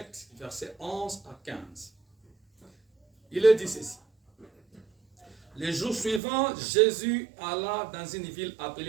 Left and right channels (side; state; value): left; drops out; at 6.2 s